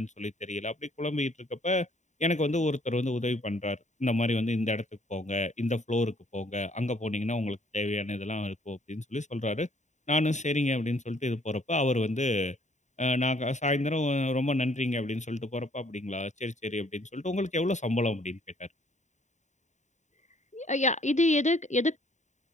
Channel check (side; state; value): right; late; 0.34 ms